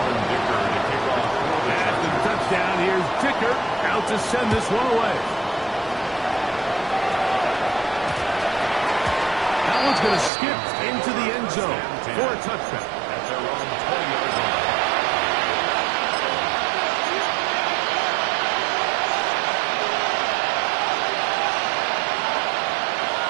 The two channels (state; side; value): drops out; left; at 10.3 s